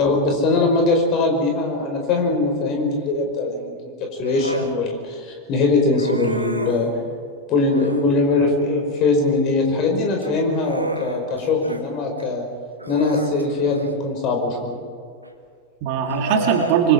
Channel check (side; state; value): both; normal; correlation 0.05